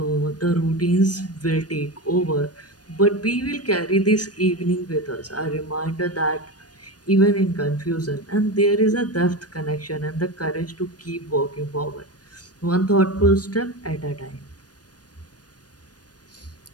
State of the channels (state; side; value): late; right; 0.69 ms